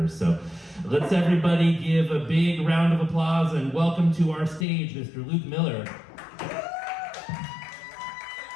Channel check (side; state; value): right; drops out; at 4.7 s